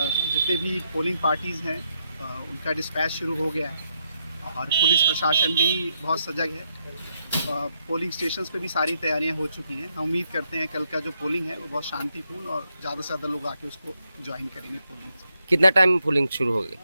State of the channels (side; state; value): both; inverted; correlation -0.78